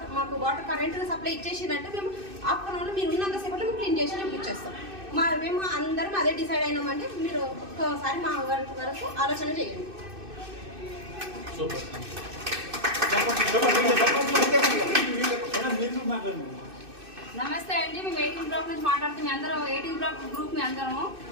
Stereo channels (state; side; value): late; left; 2.6 ms